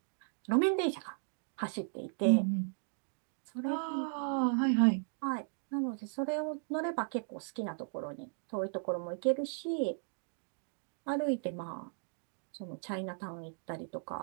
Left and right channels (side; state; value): left; silent; digital silence